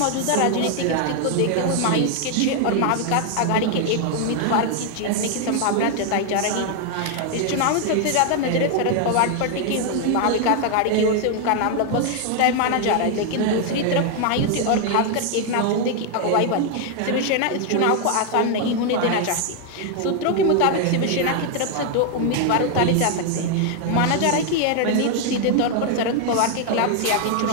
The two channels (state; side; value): different; both; correlation 0.00